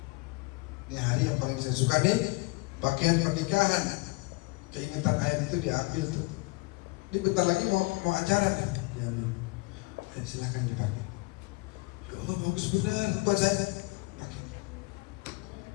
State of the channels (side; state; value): right; quieter; 24.7 dB